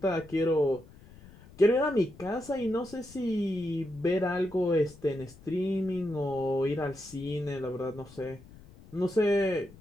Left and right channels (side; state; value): left; noise; rumble, 21 dB below the sound